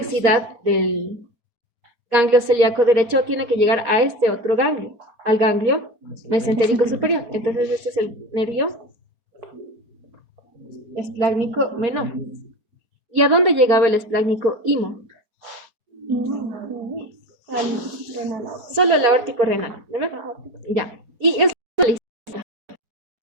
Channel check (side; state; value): left; late; 4.3 ms